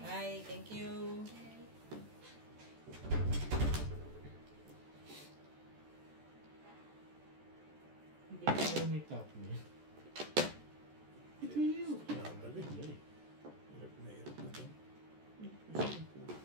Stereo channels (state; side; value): late; left; 14 ms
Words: Bye, thank you. Hindi ko may top niya. Ito yun. Nakagaling. Ay, Hirap na hirap na to.